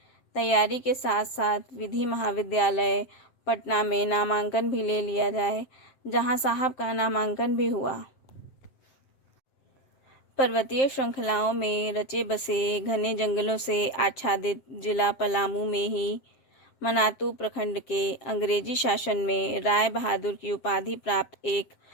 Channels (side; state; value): right; late; 7.7 ms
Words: तैयारी के साथ साथ विधि महाविद्यालय पटना में नामांकन भी ले लिया जाए, जहां साहब का नामांकन भी हुआ। पर्वतीय श्रृंखलाओं में रचे बसे घने जंगलों से आच्छादित जिला पलामू में ही मनातू प्रखंड के अंग्रेजी शासन में राय बहादुर की उपाधि प्राप्त एक